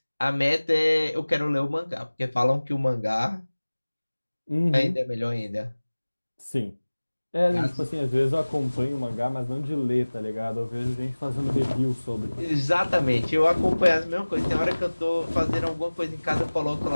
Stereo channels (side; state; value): both; inverted; correlation -1.00